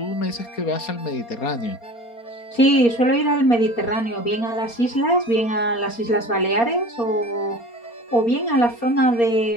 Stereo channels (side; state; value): right; late; 4.3 ms